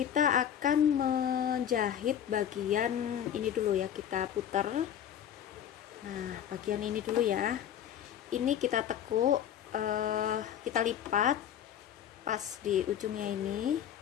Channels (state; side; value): quieter; right; 9.8 dB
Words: akan menjahit bagian ini dulu ya, kita putar. Nah, bagian ini dulu ya. Ini kita tekuk kita lipat pas di ujungnya ini